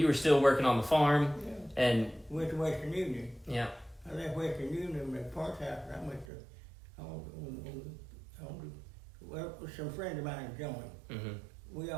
still working on the farm, Yeah. and Went to Western Union. yeah. I left Western Union at parts house, and I went to with some friends of mine joined. Mm-hmm. We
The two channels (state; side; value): drops out; left; at 6.3 s